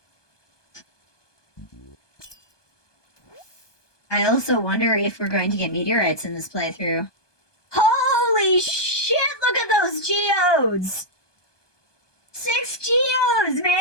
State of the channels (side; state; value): right; late; 1.2 ms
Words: I also wonder if we're going to get meteorites in this playthrough. Holy shit, look at those geodes! 6 geodes,